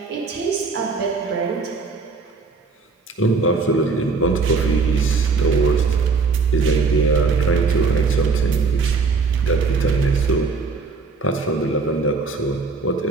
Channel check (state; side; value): quieter; left; 4.4 dB